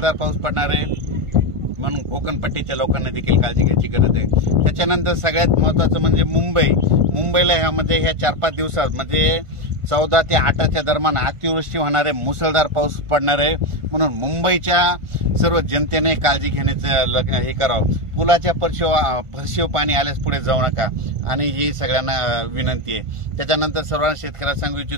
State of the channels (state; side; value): late; left; 1.5 ms